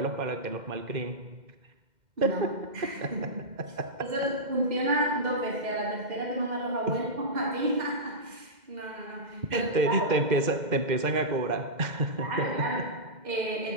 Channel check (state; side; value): late; left; 2.1 ms